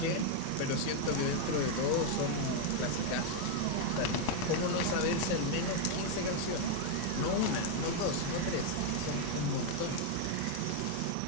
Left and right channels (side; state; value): both; different; correlation 0.01